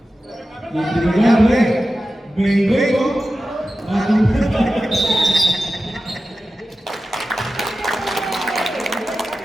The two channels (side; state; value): both; normal; correlation 0.93